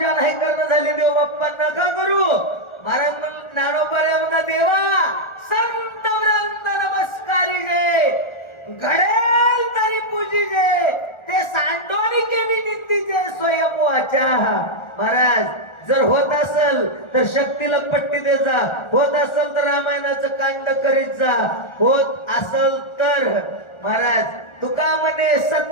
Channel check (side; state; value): right; late; 1.4 ms